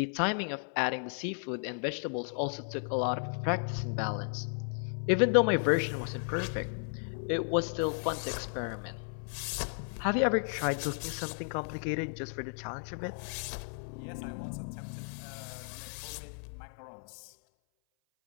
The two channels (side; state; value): right; silent; 55 dB below the other